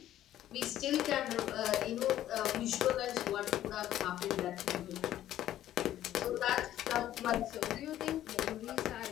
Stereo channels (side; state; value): right; quieter; 12.6 dB